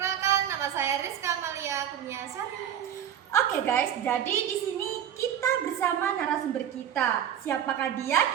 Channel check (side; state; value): left; quieter; 9.8 dB